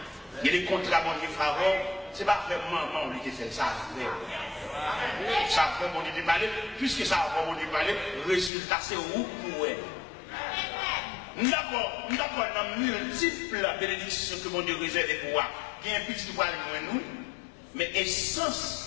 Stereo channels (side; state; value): right; drops out; at 8.5 s